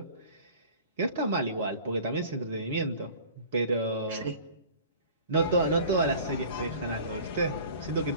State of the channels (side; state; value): both; inverted; correlation -0.44